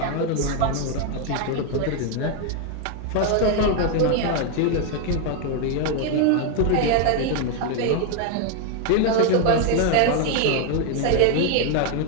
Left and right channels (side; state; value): both; different; correlation 0.01